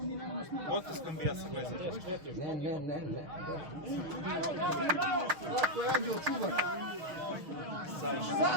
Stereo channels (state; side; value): late; left; 6.4 ms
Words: mi nemamo snimati. Potiskom bijasa, gledaj. Ne. Zlatko je anđel čuvar. Sad,